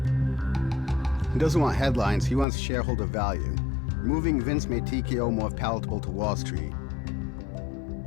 He doesn't want headlines, he wants shareholder value. Removing Vince made TKO more palatable to Wall Street.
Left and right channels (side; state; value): right; drops out; at 2.5 s